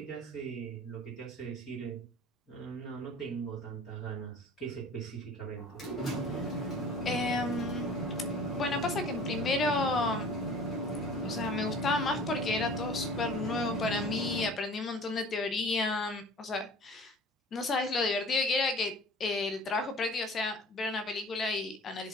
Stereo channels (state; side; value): normal; both; correlation 0.44